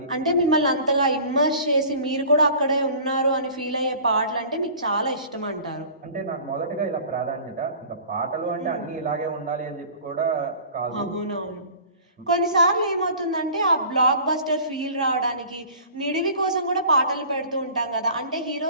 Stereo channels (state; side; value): inverted; both; correlation -0.43